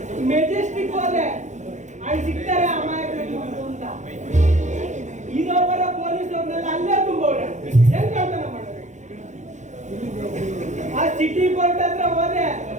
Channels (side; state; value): left; late; 0.35 ms